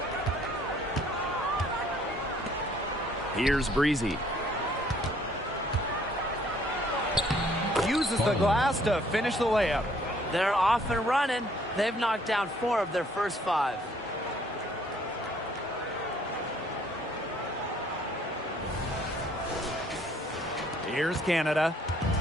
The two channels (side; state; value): both; normal; correlation 0.62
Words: Here's Breezy. Uses the glass to finish the layup. They're off and running. They've knocked down 4 of their first 5. Here's Canada.